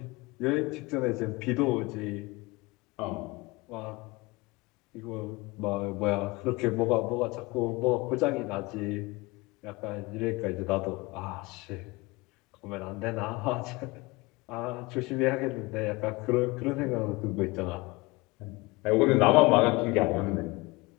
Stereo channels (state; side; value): quieter; right; 23.3 dB